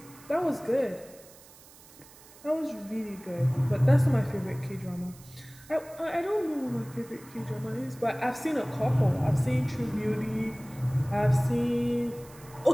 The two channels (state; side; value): noise; right; hiss, 22 dB below the sound